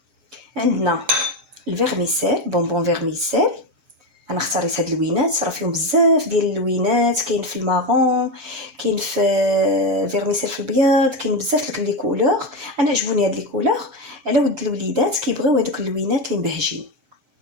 عندنا الفيرميسيل بونبون فيرميسيل. انا اختاريت هاد اللوينات راه فيهم بزاف ديال اللوينات، كاين في المارون كاين في فيرميسيل في الابيض، كاين بزاف لي كولور. انا عجبوني هاد لي كولور على ود الوليدات كيبغيو هذوك اللوينات اللي مبهجين.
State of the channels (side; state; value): left; late; 7.1 ms